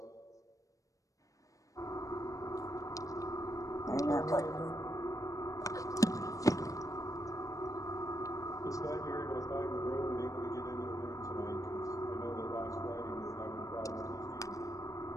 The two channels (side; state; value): right; late; 0.16 ms